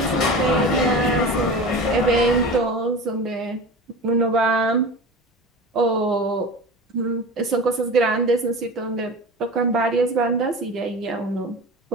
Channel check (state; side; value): normal; both; correlation 0.32